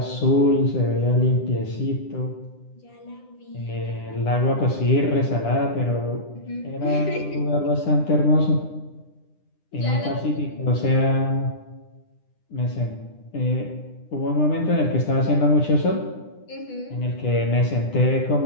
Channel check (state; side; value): late; right; 9.9 ms